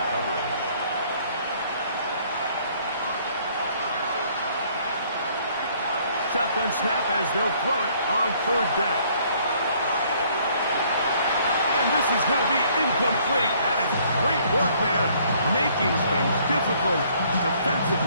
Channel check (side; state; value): both; inverted; correlation -0.62